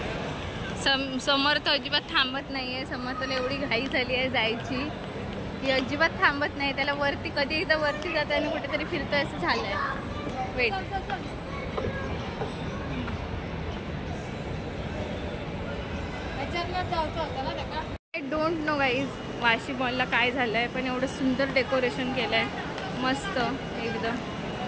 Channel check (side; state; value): both; identical; correlation 1.00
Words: समर्थ अजिबात थांबत नाही आहे. समर्थला एवढी घाई झाली आहे जायची की अजिबात थांबत नाही. त्याला वरती कधी एकदा वरती जातं आणि कुठेतरी फिरतं असं झालं आहे. वेट, जायचं होतं ना त्याला. I don't know guys Vashi मॉलला काय झालं आहे, पण एवढं सुंदर डेकोरेशन केलं आहे मस्त एकदम.